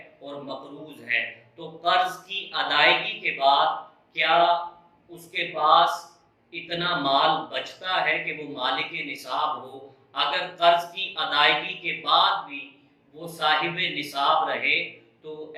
और मक़रूज़ है तो कर्ज़ की अदायगी के बाद क्या उसके पास इतना माल बचता है कि वो मालिक निसाब हो। अगर कर्ज की अदायगी के बाद भी वो साहिब निसाब रहे तो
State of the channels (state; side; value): identical; both; correlation 1.00